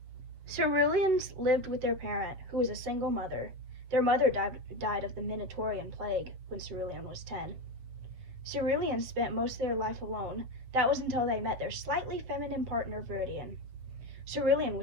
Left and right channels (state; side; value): late; left; 7.7 ms